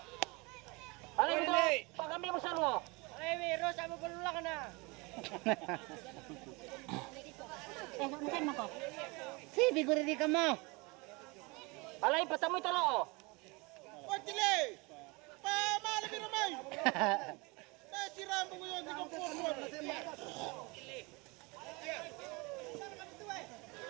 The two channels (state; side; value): quieter; left; 26.8 dB